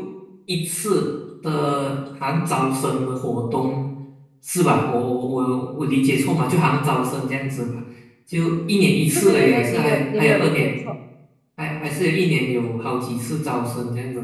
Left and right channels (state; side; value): identical; both; correlation 1.00